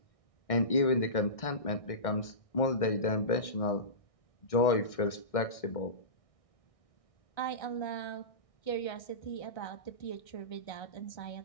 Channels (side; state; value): right; late; 1.6 ms